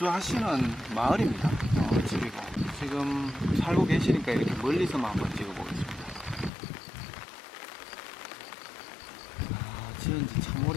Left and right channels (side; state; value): right; drops out; at 6.5 s